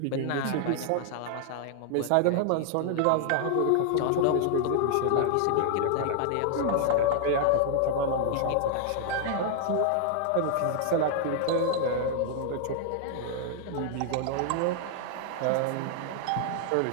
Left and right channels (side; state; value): both; different; correlation 0.00